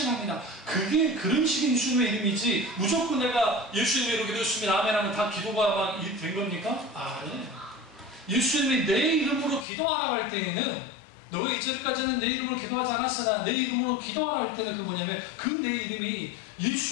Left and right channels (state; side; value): drops out; right; at 9.7 s